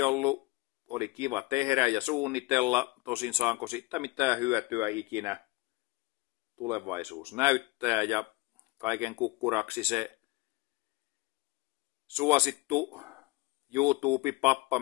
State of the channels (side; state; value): right; quieter; 22.2 dB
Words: ollut. Oli kiva tehdä ja suunnitella. Tosin saanko siitä mitään hyötyä ikinä, tulevaisuus näyttää. Ja kaiken kukkuraksi se suosittu YouTube-pappa,